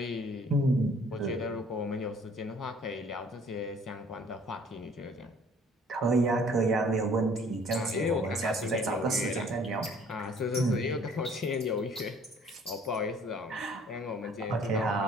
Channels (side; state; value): both; normal; correlation 0.56